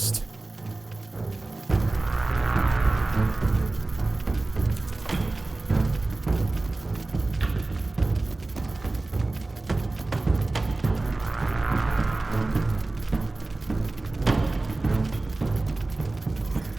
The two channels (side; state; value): left; quieter; 3.1 dB